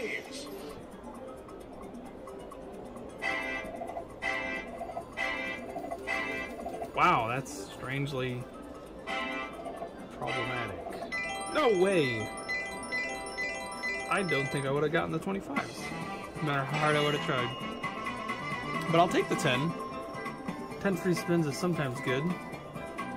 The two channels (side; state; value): both; identical; correlation 1.00